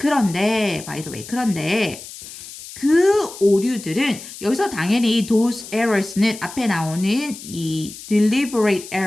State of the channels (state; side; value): noise; left; hiss, 14 dB below the sound